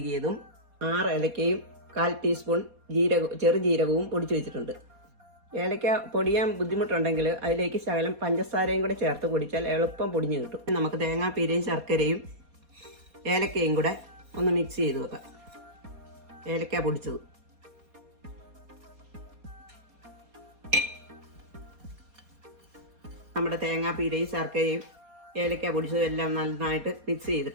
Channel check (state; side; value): late; left; 4.2 ms